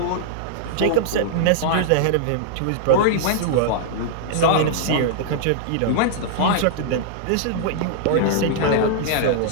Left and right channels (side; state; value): both; different; correlation -0.01